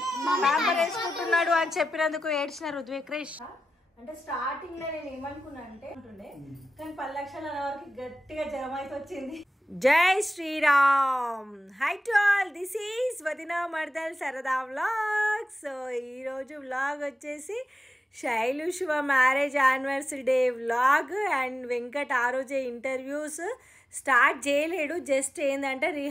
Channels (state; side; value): normal; both; correlation 0.93